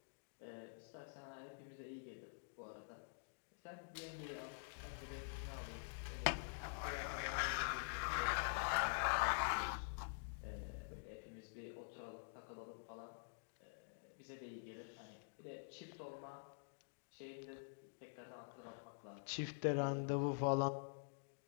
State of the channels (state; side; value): silent; right; digital silence